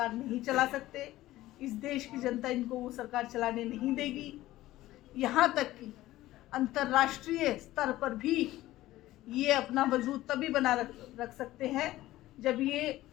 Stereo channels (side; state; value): right; quieter; 16.0 dB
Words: नहीं चला सकते। इस देश की जनता इनको वो सरकार चलाने नहीं देगी। यहाँ तक कि अंतर्राष्ट्रीय स्तर पर भी ये अपना वजूद तभी बना रख सकते हैं जब ये